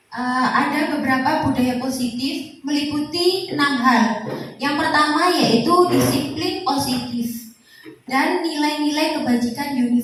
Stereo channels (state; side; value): identical; both; correlation 1.00